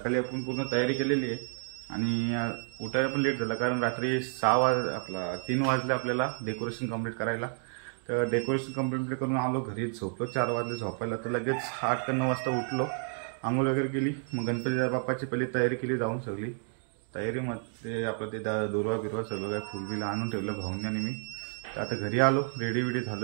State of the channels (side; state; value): left; silent; 57 dB below the other